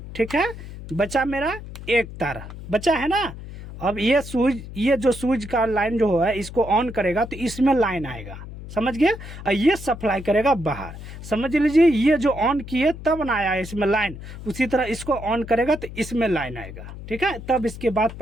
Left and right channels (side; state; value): left; noise; hum, 12 dB below the sound